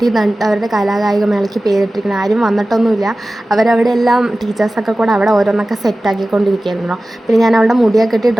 അവരുടെ കലാകായിക മേളയ്ക്ക് പേരിട്ടിരിക്കുന്നത്. ആരും വന്നിട്ടൊന്നുമില്ല. അവരവിടെ എല്ലാം ടീച്ചേഴ്സൊക്കെ കൂടെ അവിടെ ഓരോന്നൊക്കെ സെറ്റാക്കിക്കൊണ്ടിരിക്കുകയായിരുന്നു. പിന്നെ ഞാൻ അവളുടെ മുടിയൊക്കെ കെട്ടി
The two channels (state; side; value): normal; both; correlation 0.96